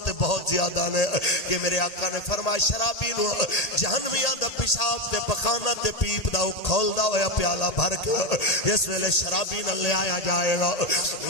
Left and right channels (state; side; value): late; right; 1.8 ms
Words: بہت زیادہ نے کہ میرے آقا نے فرمایا شرابی نو جہنمیاں دا پیشاب تے پخانہ تے پیپ دا کھول دا ہویا پیالہ بھر کے اس ویلے شرابی نہ لے آیا جائے گا